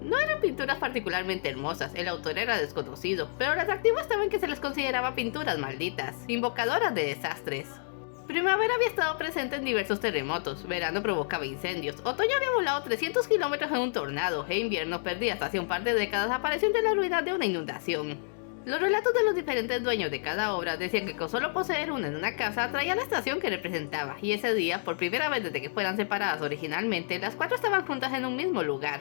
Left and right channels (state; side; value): silent; right; digital silence